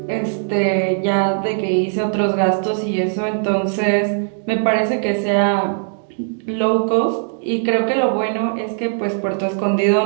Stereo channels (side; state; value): left; silent; digital silence